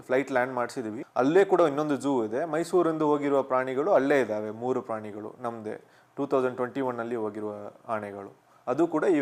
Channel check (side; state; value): both; identical; correlation 1.00